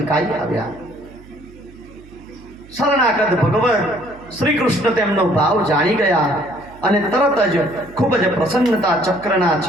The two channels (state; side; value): noise; right; hum, 22 dB below the sound